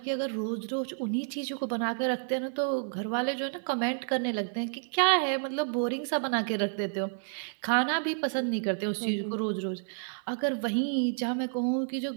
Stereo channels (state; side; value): silent; left; 58 dB below the other